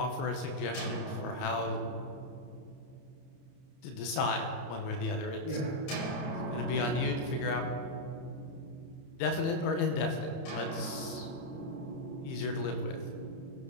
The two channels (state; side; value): late; right; 30 ms